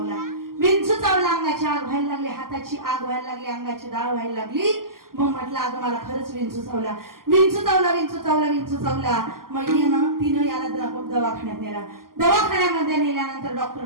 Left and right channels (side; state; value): left; late; 0.92 ms